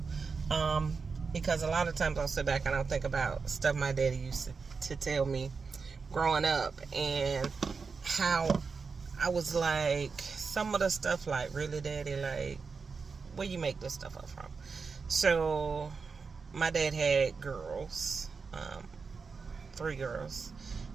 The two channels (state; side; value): quieter; left; 5.0 dB